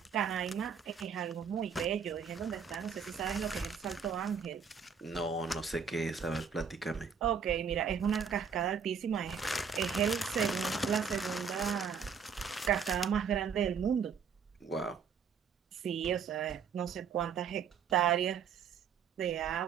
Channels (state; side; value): quieter; left; 6.6 dB